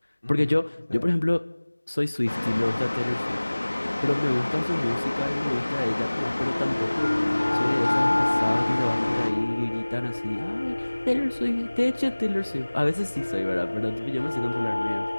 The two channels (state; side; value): inverted; both; correlation -1.00